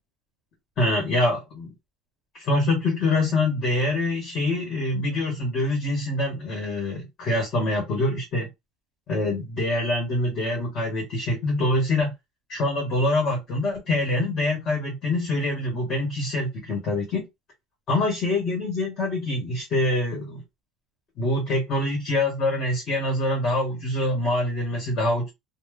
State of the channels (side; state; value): both; normal; correlation 0.41